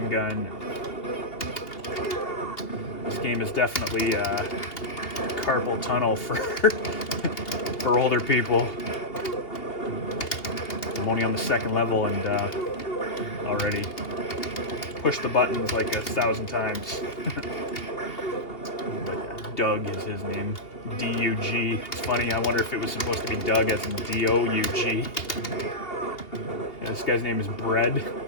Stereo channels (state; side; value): late; right; 2.8 ms